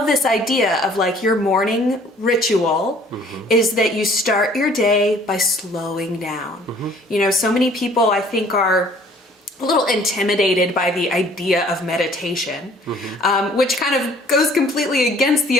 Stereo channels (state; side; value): normal; both; correlation 0.56